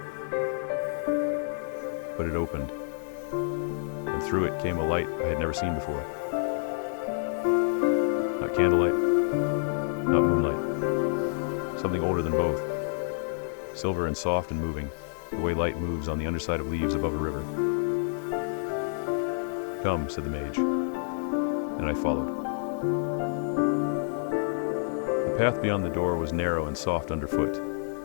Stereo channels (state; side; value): silent; right; 59 dB below the other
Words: But it opened, and through it came a light I had never seen before. Not candlelight, not moonlight. Something older than both. Silver and soft and moving, the way light moves on the underside of leaves above a river. "Come," said the mage, and I followed. The path beyond the door was narrow and soft underfoot.